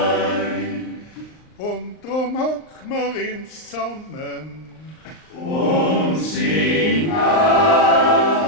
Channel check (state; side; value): late; right; 39 ms